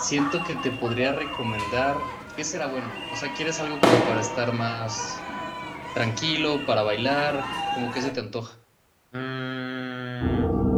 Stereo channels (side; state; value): both; identical; correlation 1.00